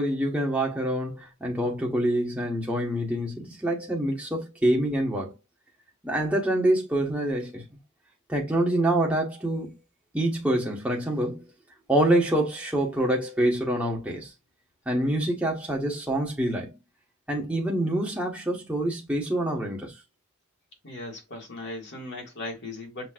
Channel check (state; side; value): normal; both; correlation 0.69